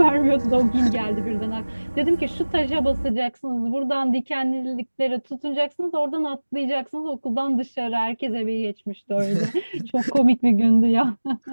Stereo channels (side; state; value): both; inverted; correlation -1.00